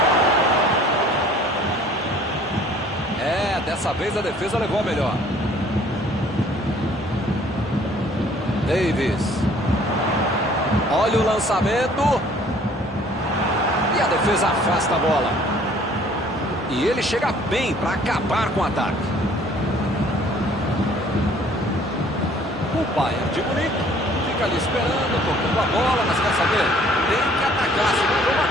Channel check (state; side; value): normal; both; correlation 0.56